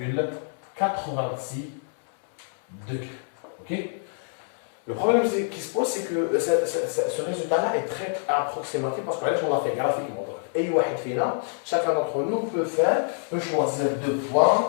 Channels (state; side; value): silent; right; 61 dB below the other